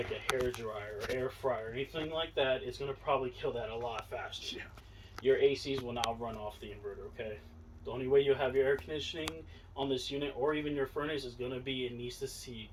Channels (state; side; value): identical; both; correlation 1.00